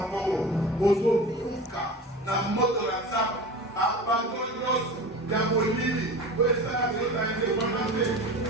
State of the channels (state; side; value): normal; both; correlation 0.33